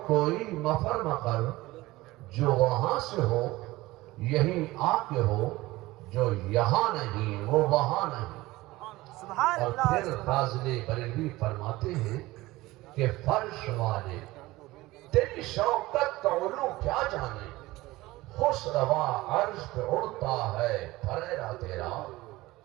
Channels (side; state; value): left; quieter; 19.0 dB